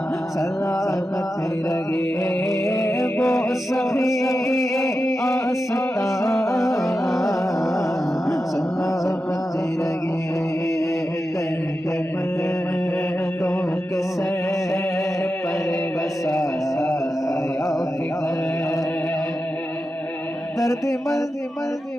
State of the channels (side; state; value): both; normal; correlation 0.91